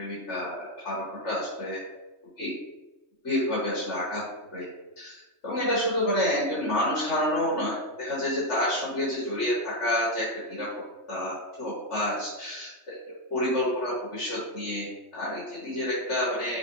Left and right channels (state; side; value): late; right; 3.2 ms